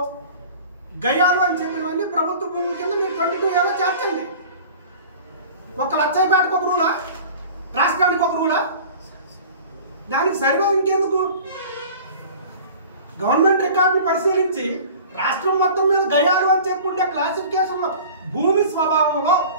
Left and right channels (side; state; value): both; inverted; correlation -0.42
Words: గయాలు అని చెప్పినవన్నీ ప్రభుత్వ భూముల కింద మీరు 22Aలో చేర్చండి. ఒక లచ్చయ్యపేటకు ఒక రూలా, రాష్ట్రానికి ఒక రూలా? దానికి సర్వే ఇంకెందుకు? గవర్నమెంట్ రికార్డును పరిశీలించి రాష్ట్రం మొత్తం మీద గయాలు అని చెప్పి ఉండే క్లాసిఫికేషన్లో భూమి స్వభావంలో